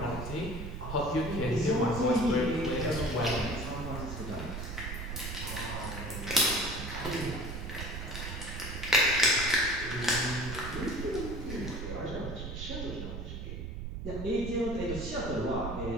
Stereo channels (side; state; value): right; noise; rumble, 6 dB below the sound